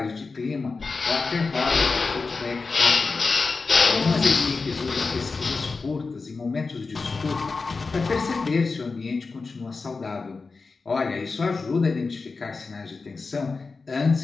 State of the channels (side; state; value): right; quieter; 4.2 dB